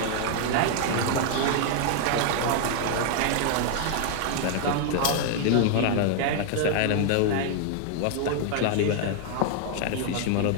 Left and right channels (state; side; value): different; both; correlation 0.00